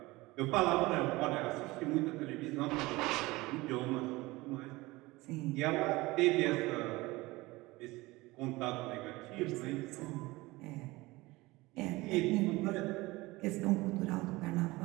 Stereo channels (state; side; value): quieter; left; 21.1 dB